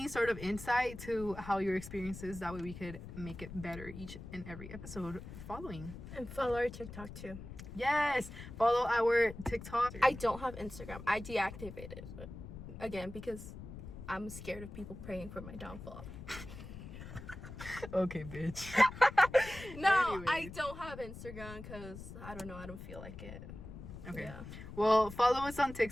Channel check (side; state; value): left; noise; rumble, 12 dB below the sound